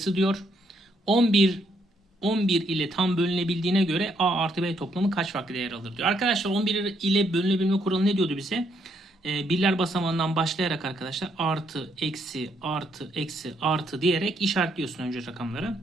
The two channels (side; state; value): both; normal; correlation 0.73